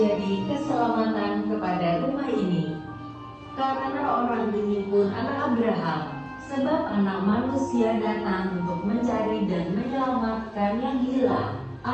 keselamatan kepada rumah ini. Karena orang ini pun anak Abraham, sebab anak manusia datang untuk mencari dan menyelamatkan yang hilang.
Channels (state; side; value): identical; both; correlation 1.00